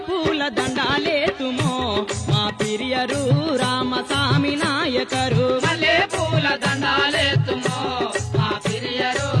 పూల దండాలేతుమో మా పిరియరు రామస్వామి నాయకరు మల్లె పూల దండాలేతుమో మా పిరియరు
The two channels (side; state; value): both; identical; correlation 1.00